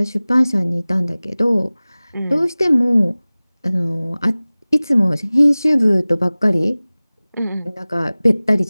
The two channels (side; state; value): both; inverted; correlation -0.99